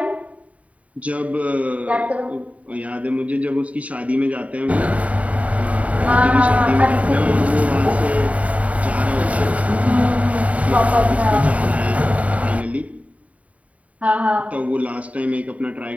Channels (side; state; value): left; late; 0.067 ms